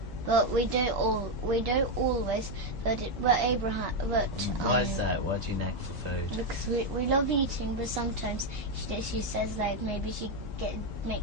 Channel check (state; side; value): normal; both; correlation 0.05